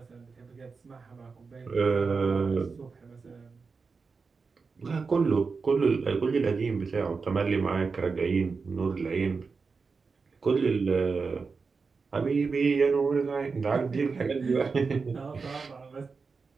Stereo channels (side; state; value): left; quieter; 4.8 dB